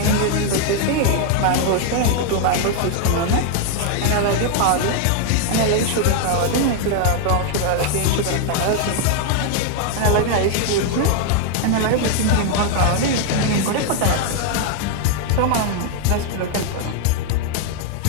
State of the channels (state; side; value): different; both; correlation 0.00